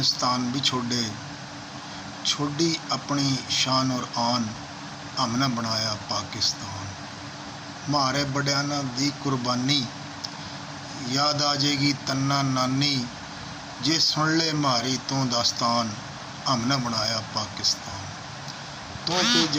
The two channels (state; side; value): identical; both; correlation 1.00